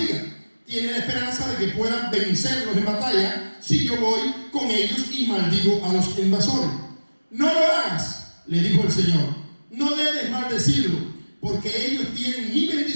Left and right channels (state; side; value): inverted; both; correlation -1.00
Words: Tiene la esperanza de que puedan vencerlos en batalla si yo voy con ellos y maldigo a los invasores. No lo hagas, le dijo el Señor. No debes maldecirlo, porque ellos tienen mi